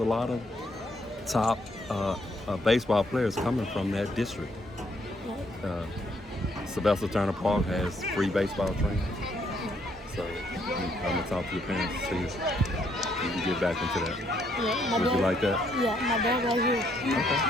lot of top baseball players coming from that district. Sylvester Turner Park has free baseball training. So I'm gonna talk to your parents to see if you can get back into that. Yeah, Would you like that? Yeah, my dad right here. Okay.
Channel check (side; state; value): both; normal; correlation 0.71